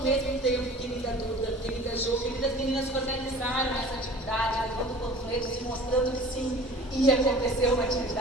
mesmo tempo, querida Duda, querida Jo, queridas meninas que organizaram essa atividade, levando panfletos e mostrando que sim, ia acontecer uma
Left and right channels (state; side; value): normal; both; correlation 0.44